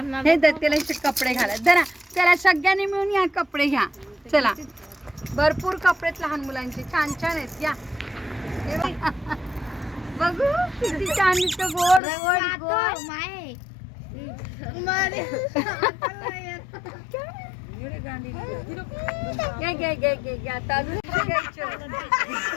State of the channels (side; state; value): right; drops out; at 12.0 s